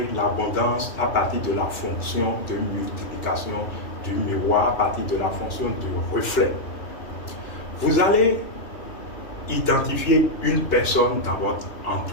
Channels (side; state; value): right; late; 2.9 ms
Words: l'abondance à partir de la fonction de multiplication du miroir, à partir de la fonction de reflet. Vous allez identifier une personne dans votre